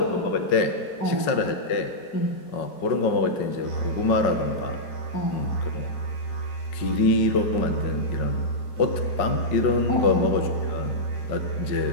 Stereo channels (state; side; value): late; right; 5.4 ms